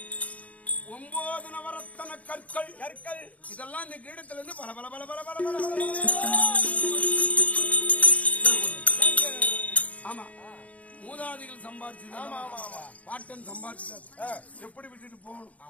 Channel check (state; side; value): late; right; 0.069 ms